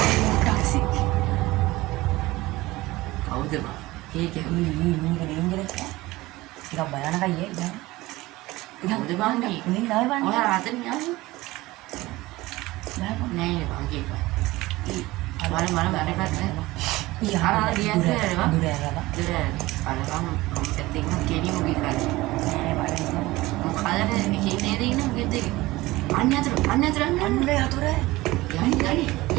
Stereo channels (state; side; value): quieter; left; 19.3 dB